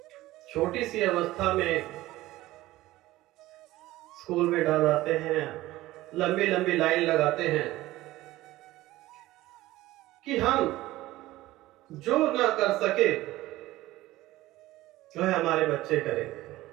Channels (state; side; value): quieter; left; 17.0 dB